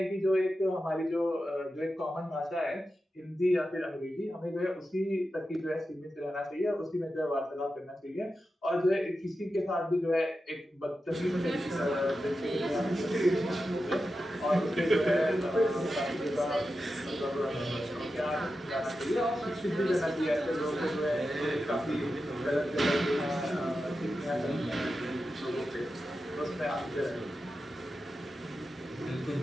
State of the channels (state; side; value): normal; both; correlation 0.91